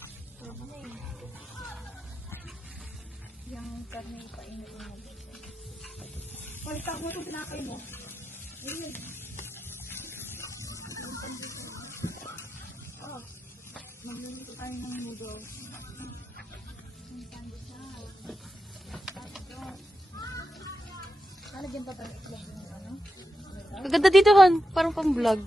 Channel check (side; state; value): both; normal; correlation 0.88